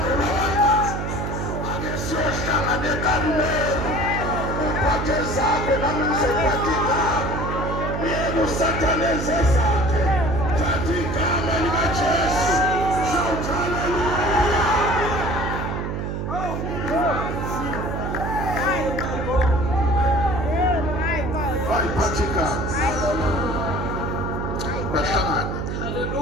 ulawakazi, ake siyohlangana eKarumeli, uphathe zakho nami ngizophatha igama, uyeke uSathane enze zakhe, thatha igama likaJesu. Shout hallelujah. Bayiphathe igama bahlangane.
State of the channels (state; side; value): noise; right; hum, 3 dB below the sound